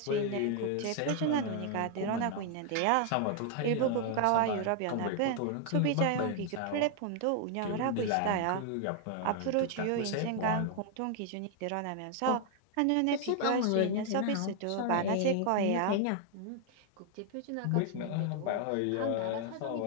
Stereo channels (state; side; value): different; both; correlation 0.00